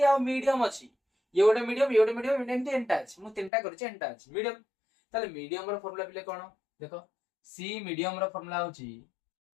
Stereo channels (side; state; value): right; drops out; at 3.5 s